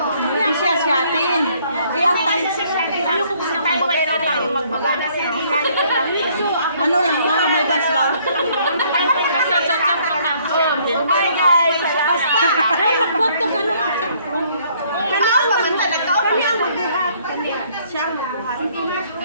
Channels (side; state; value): both; inverted; correlation -0.63